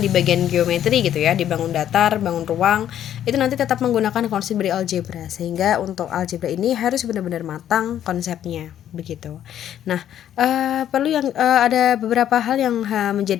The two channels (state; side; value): quieter; right; 10.7 dB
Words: bagian geometri gitu ya, di bangun datar, bangun ruang, itu nanti tetap menggunakan konsep dari algebra, sehingga untuk algebra ini harus benar-benar matang konsepnya begitu. Nah, perlu yang ada beberapa hal yang